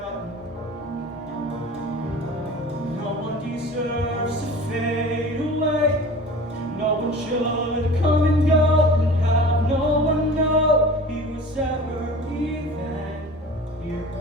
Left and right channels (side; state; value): both; normal; correlation 0.40